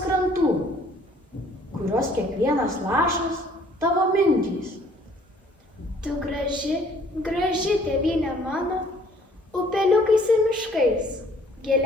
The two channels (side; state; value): both; normal; correlation 0.58